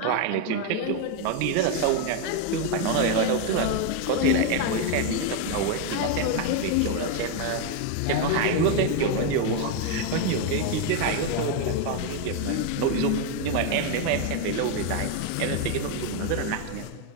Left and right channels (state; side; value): different; both; correlation 0.02